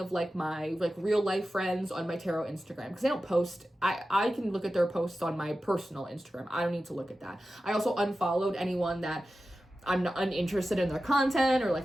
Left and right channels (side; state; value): both; normal; correlation 0.93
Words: like my like real life friends on my tarot Instagram, because they don't post. I can look at their posts on my personal Instagram. I don't need to look at that. I also unfollowed anyone that I'm not uninterested in their content, or